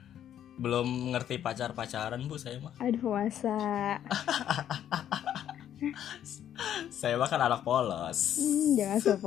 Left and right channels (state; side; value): quieter; right; 10.4 dB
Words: Belum ngerti pacaran Bu saya mah. Aduh, masa. Saya mah kan anak polos. Jangan